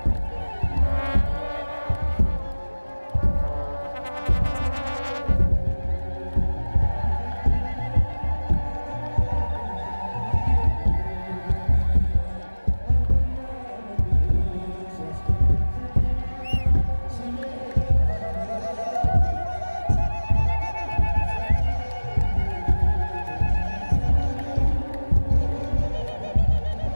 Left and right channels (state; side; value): inverted; both; correlation -1.00